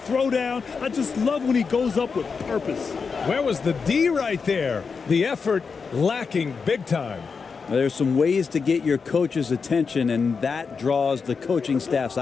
I just love when he goes up with purpose. Where was the D right there? The effort lacking big time. There's some ways to get your coach's attention, and that draws the coaching staff's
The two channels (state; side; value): quieter; right; 5.3 dB